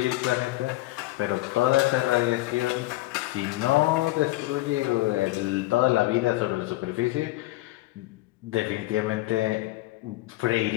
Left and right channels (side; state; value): right; quieter; 18.5 dB